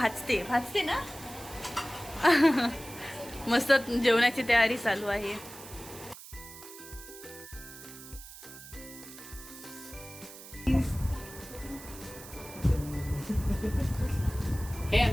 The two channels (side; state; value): right; noise; hiss, 15 dB below the sound